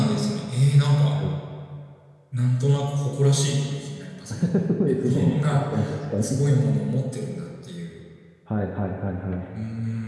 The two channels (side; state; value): both; identical; correlation 1.00